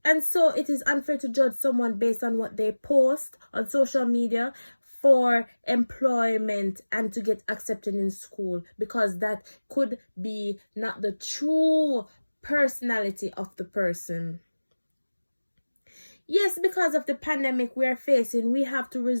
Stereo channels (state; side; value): inverted; both; correlation -1.00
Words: And so it is unfair to judge someone based on what they post on social media for employment and to get accepted in school, because that could be not the true personality of the person. Yes, because of the pandemic we are facing, we have to